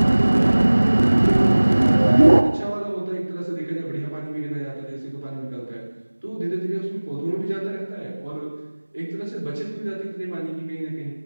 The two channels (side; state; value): both; inverted; correlation -1.00